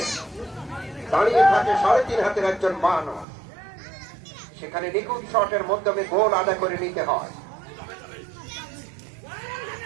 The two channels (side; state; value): left; drops out; at 3.2 s